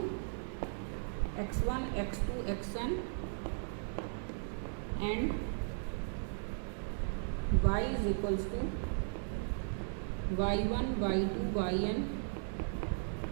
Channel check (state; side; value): silent; left; digital silence